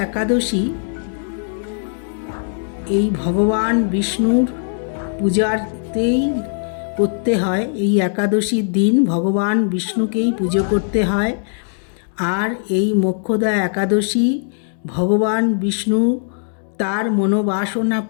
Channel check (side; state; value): right; silent; digital silence